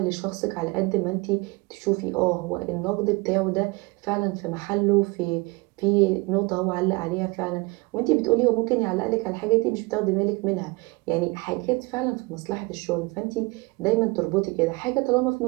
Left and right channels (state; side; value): quieter; left; 25.9 dB